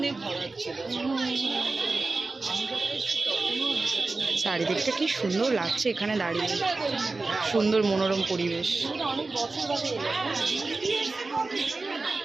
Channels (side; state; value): left; quieter; 3.6 dB